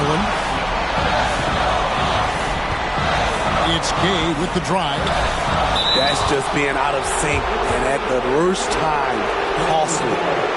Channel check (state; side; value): identical; both; correlation 1.00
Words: It's Gay with the drive. That's just being out of sync and at the worst time, costly.